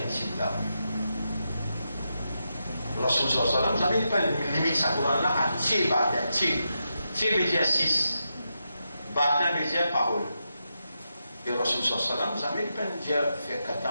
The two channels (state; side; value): inverted; both; correlation -0.86